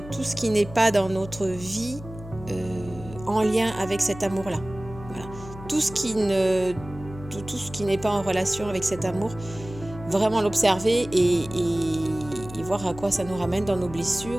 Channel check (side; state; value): left; noise; hum, 14 dB below the sound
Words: tout ce qui n'est pas dans notre vie en lien avec cet amour-là. Voilà. Tout ce qui n'est pas en relation avec cet amour, vraiment l'observer et voir à quoi ça nous ramène dans nos